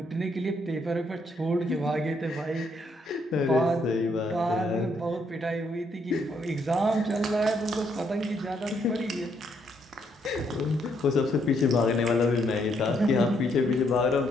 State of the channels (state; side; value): normal; both; correlation 0.73